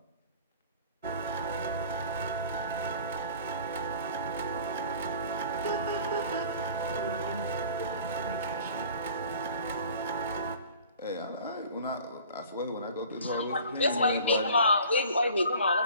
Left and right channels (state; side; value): inverted; both; correlation -0.46